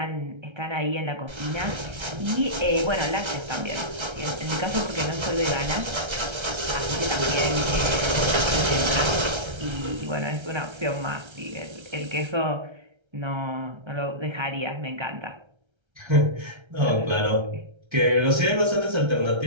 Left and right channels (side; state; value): left; late; 1.3 ms